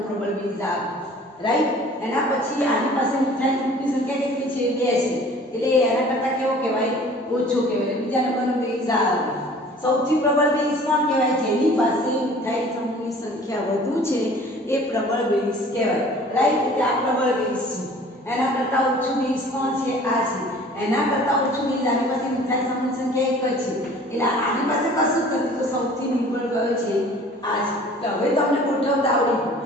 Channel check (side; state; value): both; normal; correlation 0.48